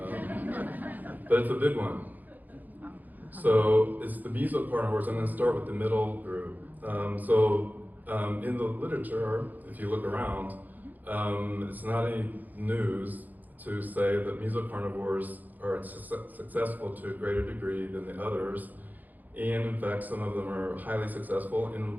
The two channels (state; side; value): late; left; 0.083 ms